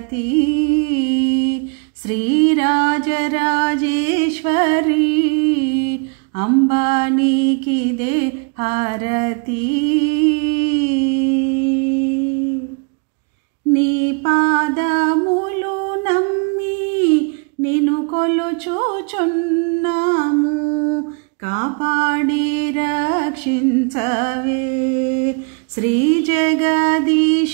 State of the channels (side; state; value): left; quieter; 34.9 dB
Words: श्रीराजराजेश्वरी अंबानीकिदे हारती నీ పాదములు నమ్మి నిన్ను కొలుచుచున్నాము కాపాడి రక్షించవే శ్రీ